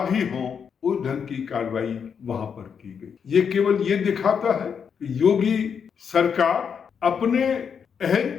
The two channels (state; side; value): quieter; right; 6.9 dB